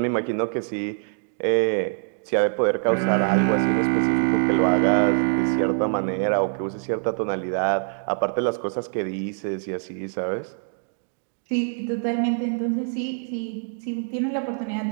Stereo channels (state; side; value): silent; left; 62 dB below the other